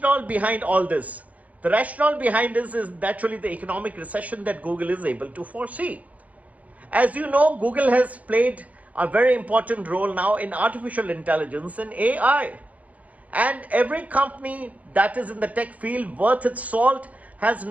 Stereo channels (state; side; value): late; left; 0.071 ms